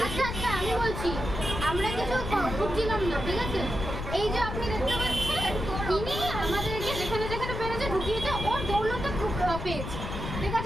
আচ্ছা আমি বলছি, আমরা কিছু খুঁজছিলাম না, ঠিক আছে? এই যে আপনি দেখতে পাচ্ছেন, তিনি আমাদেরকে যেখানে যেখানে পেরেছে ঢুকিয়েছে, ওর দৌলতে পেয়েছে, ঠিক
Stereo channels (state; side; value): noise; left; rumble, 5 dB below the sound